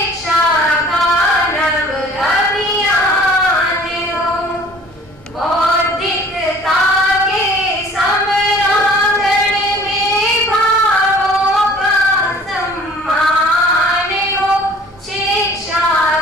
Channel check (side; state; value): both; normal; correlation 0.50